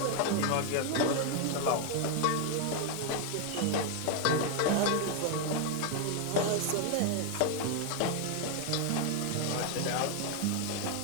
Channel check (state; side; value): different; both; correlation 0.01